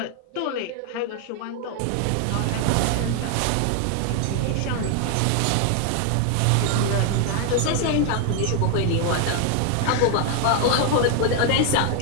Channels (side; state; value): both; different; correlation 0.00